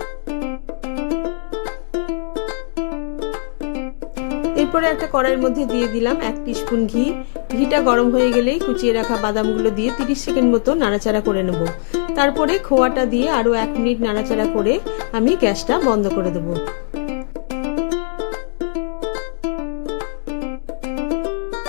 এরপরে একটা কড়াইয়ের মধ্যে দিয়ে দিলাম 1 টিস্পুন ঘি। ঘিটা গরম হয়ে গেলেই কুচিয়ে রাখা বাদামগুলো দিয়ে 30 সেকেন্ড মতো নাড়াচাড়া করে নেব। তারপরে খোয়াটা দিয়ে আরও 1 মিনিট নাড়াচাড়া করে আমি গ্যাসটা বন্ধ করে দেব।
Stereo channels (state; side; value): silent; right; digital silence